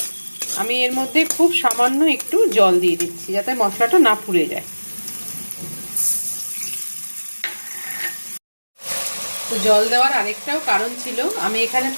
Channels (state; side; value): inverted; both; correlation -1.00